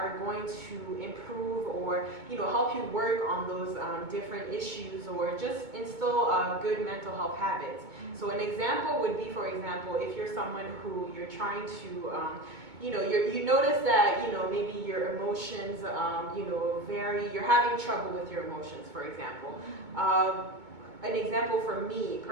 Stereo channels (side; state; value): left; late; 2.2 ms